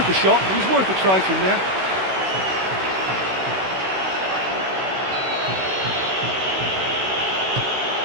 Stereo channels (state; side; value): late; left; 16 ms